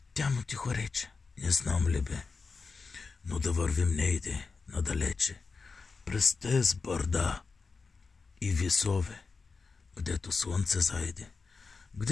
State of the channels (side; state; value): right; quieter; 4.5 dB